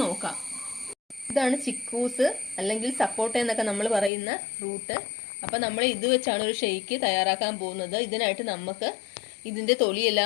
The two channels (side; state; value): right; drops out; at 4.1 s